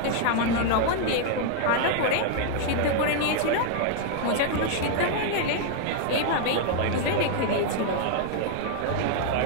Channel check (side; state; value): both; different; correlation 0.00